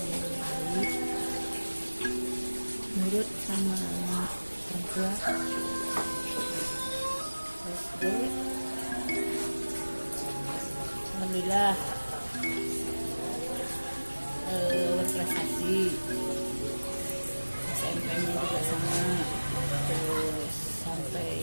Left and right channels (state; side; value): inverted; both; correlation -1.00